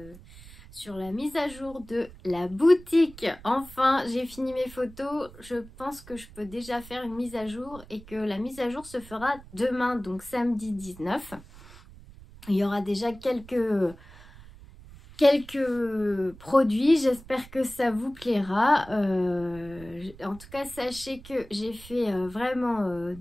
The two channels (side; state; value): right; noise; rumble, 19 dB below the sound